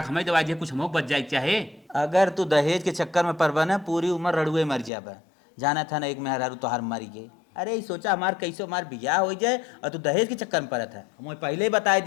हमें दवाई दिया, कुछ हम बच जाए चाहे। अगर तू दहेज के चक्कर में पड़बा ना पूरी उम्र रड़ुए मर जाबा। जाना था ना एक मेहरारू तोहार मरी गई। अरे ये सोचा हमार कैसे हमार बियाह हो जाए और तू दहेज के चक्कर में पड़त है। हमें पहले ही बताए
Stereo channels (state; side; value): drops out; right; at 4.9 s